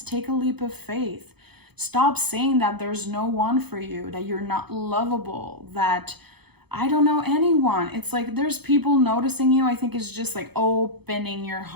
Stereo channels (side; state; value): left; late; 0.98 ms